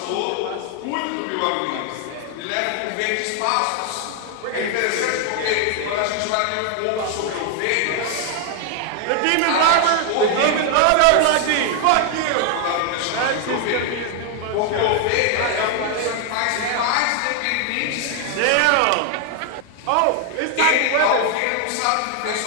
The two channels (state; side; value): different; both; correlation 0.00